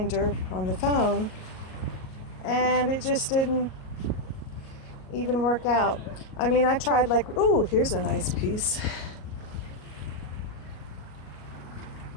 on the phone, and it just didn't even work out. I mean, I tried like, ooh, here's a nice piece.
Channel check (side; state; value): right; late; 38 ms